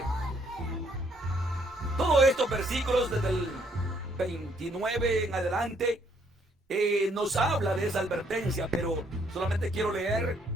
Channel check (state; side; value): normal; both; correlation 0.68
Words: Todos estos versículos desde el 29 en adelante nos habla de esa advertencia, pero solamente quiero leer